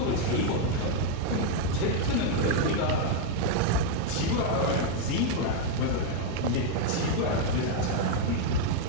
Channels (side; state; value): both; different; correlation 0.00